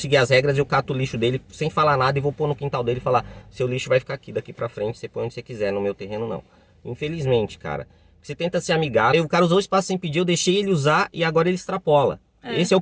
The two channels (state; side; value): identical; both; correlation 1.00